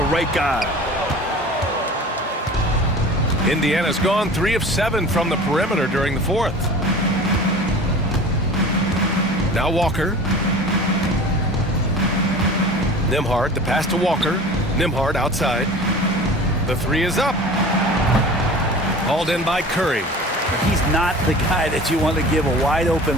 right guy. Indiana's gone 3 of 7 from the perimeter during the fourth. Now Walker. Nembhard, the pass to Walker. Nembhard outside. The three is up. Hauled in by Curry. He's not the guy that you want to give a wide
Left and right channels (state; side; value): normal; both; correlation 0.39